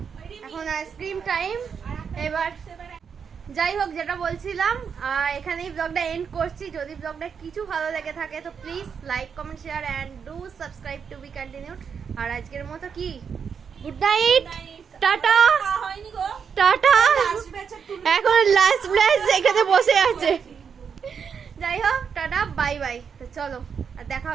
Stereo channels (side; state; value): left; quieter; 6.6 dB